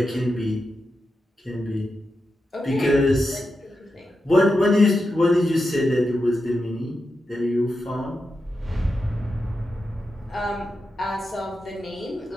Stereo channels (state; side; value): normal; both; correlation 0.88